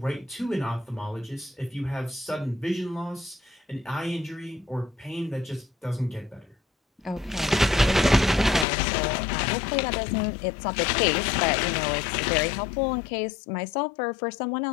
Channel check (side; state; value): right; drops out; at 8.7 s